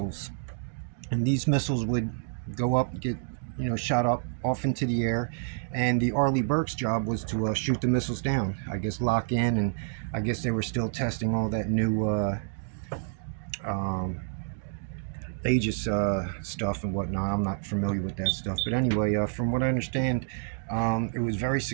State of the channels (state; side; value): silent; left; digital silence